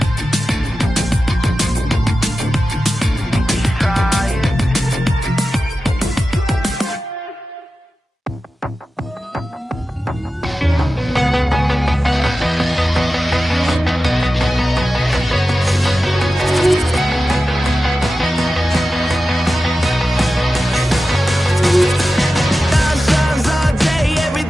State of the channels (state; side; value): normal; both; correlation 0.93